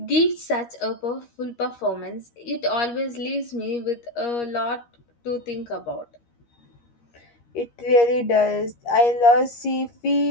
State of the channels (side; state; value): right; late; 13 ms